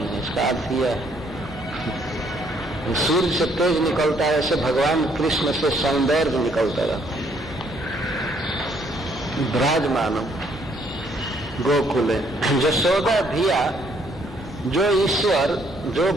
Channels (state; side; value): normal; both; correlation 0.67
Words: इसका अर्थ यह है। सूर्य से तेज निकलता है, ऐसे भगवान कृष्ण से सौंदर्य निकलता रहता है। विराजमानम गोकुले, यशोदा धिया, जो ईश्वर, जो